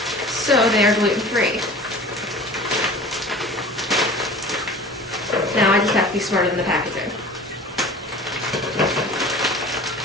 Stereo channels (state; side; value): normal; both; correlation 0.41